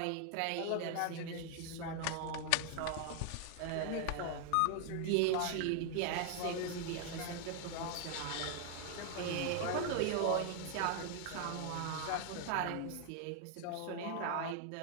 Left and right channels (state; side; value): different; both; correlation 0.00